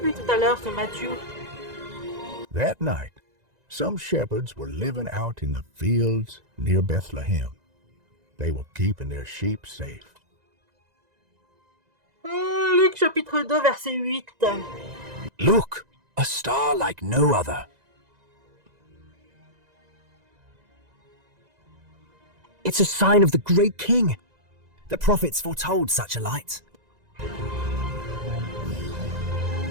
lui, tout à l'heure, ce Mathieu. That night, some shepherds were living out in the fields near Bethlehem. They were keeping their sheep safe. Luc, chapitre 2, verset 8. Look, a star like no other. It's a sign of the great king. The prophets foretold such a light.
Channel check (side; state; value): left; late; 1.9 ms